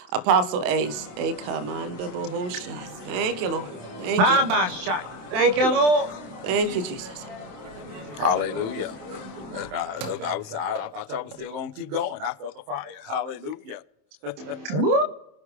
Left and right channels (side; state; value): left; late; 27 ms